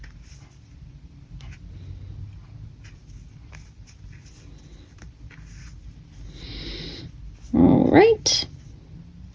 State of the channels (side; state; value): both; identical; correlation 1.00